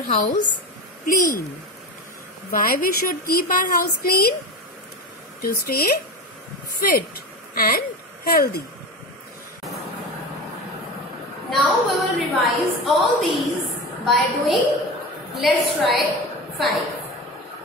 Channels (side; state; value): both; normal; correlation 0.26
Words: house clean. Why we should keep our house clean? To stay fit and healthy. Now we will revise all these by doing let's try